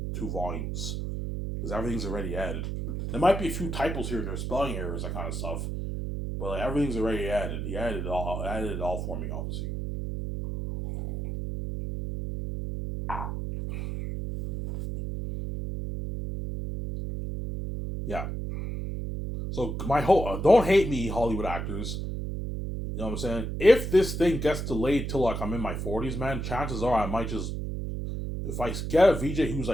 2 volumes. Because everything's already added. There might be a few typos here and there, spelling errors, that kind of stuff. But everything's already added. He added it all for me, obviously. Yeah. So my whole don't hate me, Hollywood actors. You know what I'm saying? If this thing gets delayed till I'm in my 40s, man, chances are I might just, if I get a VJ who's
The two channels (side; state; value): right; noise; hum, 4 dB below the sound